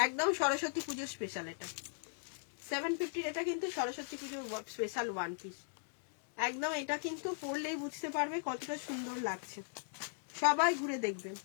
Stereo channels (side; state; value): right; silent; digital silence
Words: একদম সরস্বতী পুজোর স্পেশাল। এটা 750-র, এটা কিন্তু সরস্বতী পুজোর স্পেশাল ওয়ান পিস, একদম। এটা কিন্তু পরলেই বুঝতে পারবে কতটা সুন্দর লাগছে, সবাই ঘুরে দেখবেন,